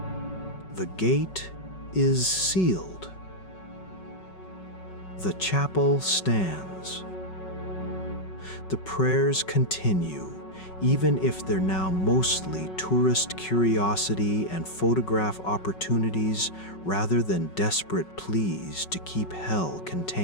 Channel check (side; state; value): right; late; 5.4 ms